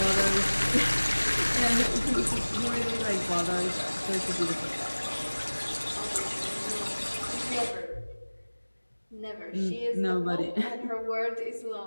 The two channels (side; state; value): both; inverted; correlation -1.00